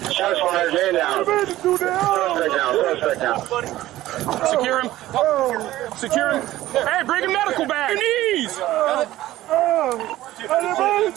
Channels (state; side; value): quieter; left; 15.3 dB